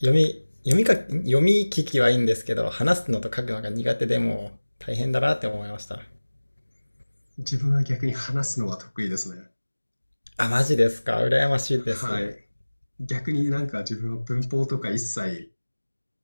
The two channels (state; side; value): inverted; both; correlation -1.00